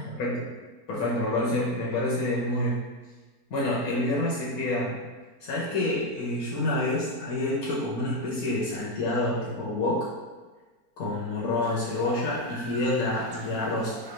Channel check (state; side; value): late; right; 4.4 ms